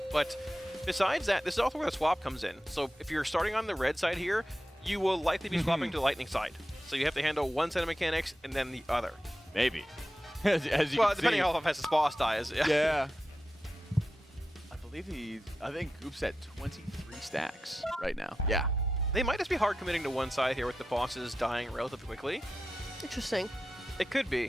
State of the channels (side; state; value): both; normal; correlation 0.91